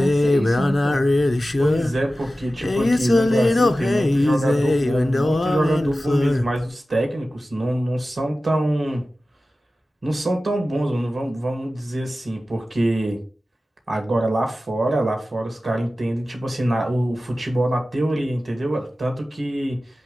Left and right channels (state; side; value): normal; both; correlation 0.95